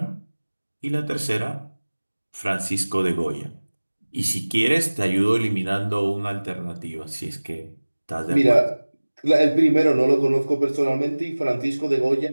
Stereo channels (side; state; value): both; inverted; correlation -1.00